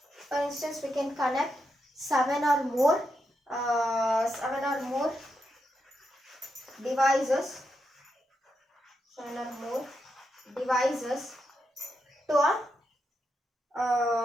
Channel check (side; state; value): both; normal; correlation 0.84